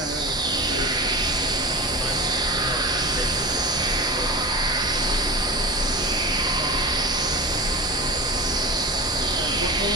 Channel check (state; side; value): normal; both; correlation 0.29